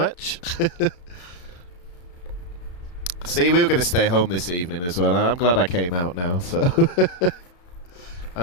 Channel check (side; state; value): right; late; 34 ms